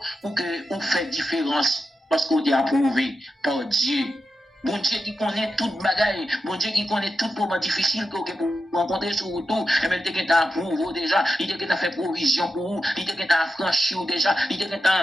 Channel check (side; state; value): both; normal; correlation 0.89